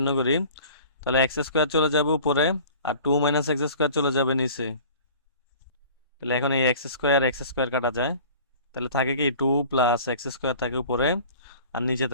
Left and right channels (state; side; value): inverted; both; correlation -0.45